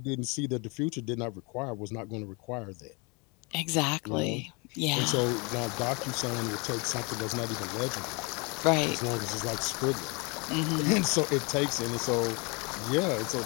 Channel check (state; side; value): quieter; right; 30.2 dB